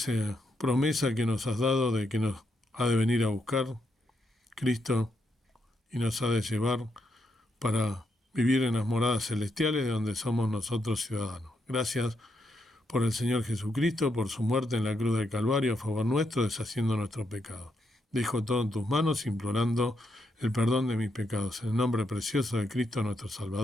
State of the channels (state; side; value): normal; both; correlation 0.80